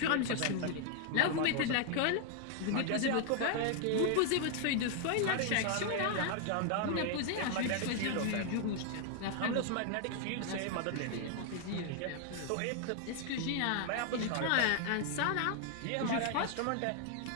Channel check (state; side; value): different; both; correlation 0.00